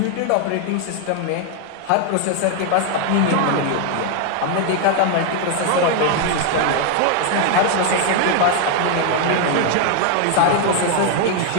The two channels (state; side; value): different; both; correlation 0.00